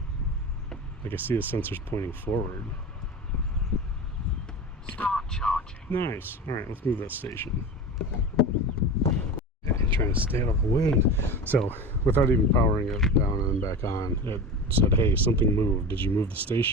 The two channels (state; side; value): normal; both; correlation 0.29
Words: Like I see the sensors pointing forward. Start charging. Nice. All right, let's move that station. Okay, trying to stay out of the wind. So, without even powering it down and then back on, it said, "Hey, something moved. Did you move the